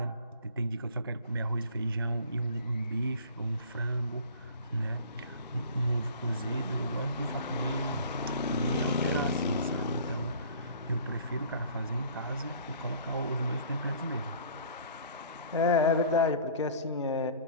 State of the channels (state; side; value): inverted; both; correlation -0.47